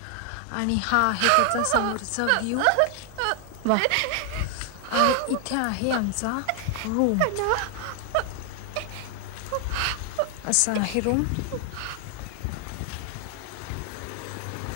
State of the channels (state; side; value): different; both; correlation 0.00